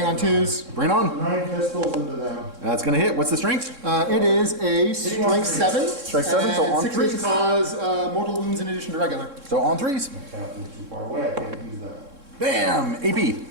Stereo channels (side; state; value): left; late; 3.6 ms